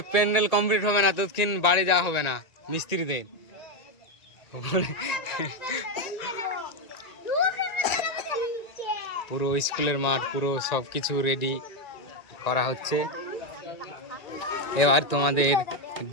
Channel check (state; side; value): late; right; 1.9 ms